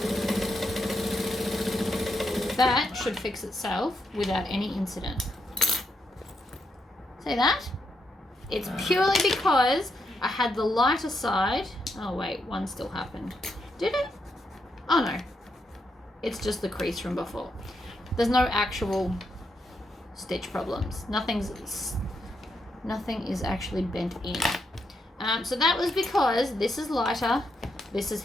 that should fix itself without any incident. See that? It's purely because I had the lighter side. Oh wait, one still happened. Did it? Oh no. It's just the crease from before. There's no actual stitch problems. Nothing is actually bent in. So that was because this is lighter, this is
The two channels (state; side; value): normal; both; correlation 0.81